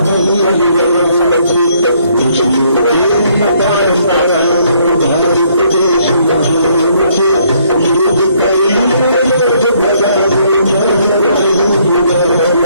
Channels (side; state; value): both; inverted; correlation -0.67